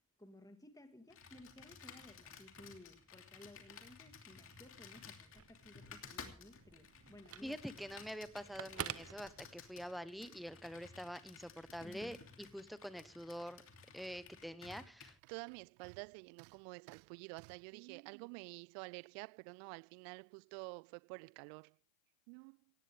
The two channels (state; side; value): drops out; left; at 15.2 s